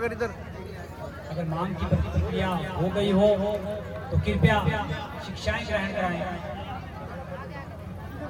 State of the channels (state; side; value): identical; both; correlation 1.00